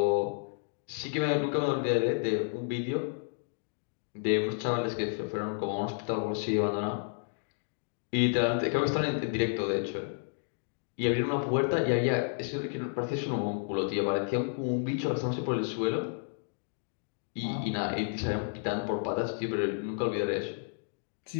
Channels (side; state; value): right; silent; digital silence